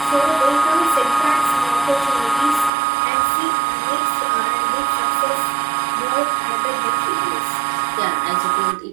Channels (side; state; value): left; drops out; at 2.7 s